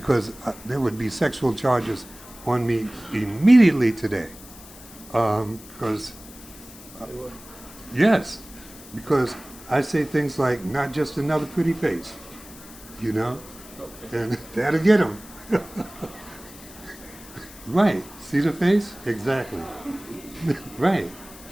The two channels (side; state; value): left; noise; hiss, 19 dB below the sound